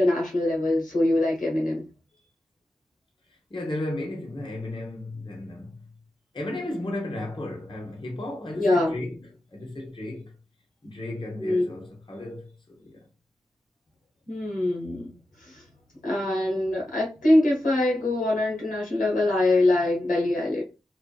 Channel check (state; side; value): normal; both; correlation 0.91